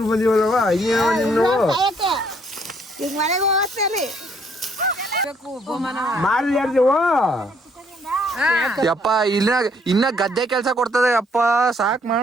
ಬಂದಿವಲ್ವ ಮಾಡ್ಲಿ ಯಾರ್ದೇವು ಯಪ್ಪ ಇನ್ನ ಗದ್ದೆ ಕೆಲ್ಸ ಕೊಡ್ತದೆ ಅಪ್ಪ ಸಾಕ್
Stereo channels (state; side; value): normal; both; correlation 0.67